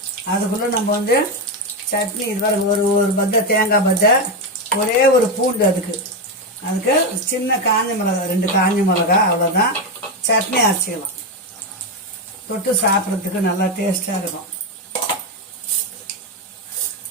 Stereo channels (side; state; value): both; normal; correlation 0.10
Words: அதுக்குள்ளே நம்ம வந்து சட்னி இது வர ஒரு பத்தை தேங்காய் பத்தை, ஒரே ஒரு பூண்டு, அதுக்கு சின்ன காஞ்ச மிளகா, 2 காஞ்ச மிளகா, அவ்வளோதான். சட்னி அரைச்சிக்கலாம். தொட்டு சாப்பிட்றதுக்கு நல்லா டேஸ்டாக இருக்கும்.